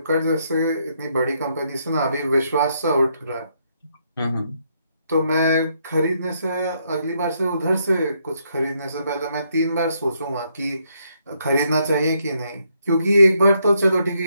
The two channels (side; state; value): both; inverted; correlation -0.75